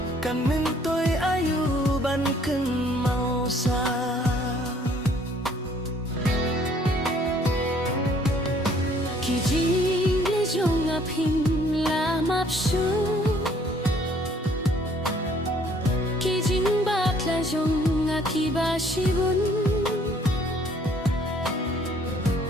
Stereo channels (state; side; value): normal; both; correlation 0.61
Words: kan min toy ayu ban ken mau sa ki jing le jonga pin la map shu ki jing bak la jonga ki ba shibun